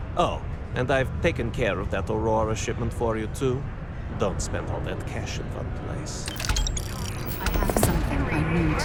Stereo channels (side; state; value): both; identical; correlation 1.00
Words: Oh, and I've taken care of that Aurora shipment for you too. Don't spend all that cash in one place. I have something I need